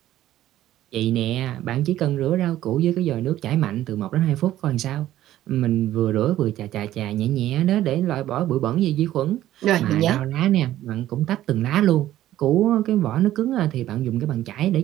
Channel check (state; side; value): quieter; left; 13.5 dB